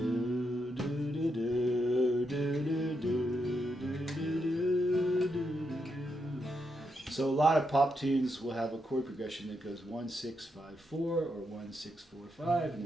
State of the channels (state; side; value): normal; both; correlation 0.82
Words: So a lot of pop tunes will have a chord progression that goes 1 6 5 4 or 1 6 4 5, and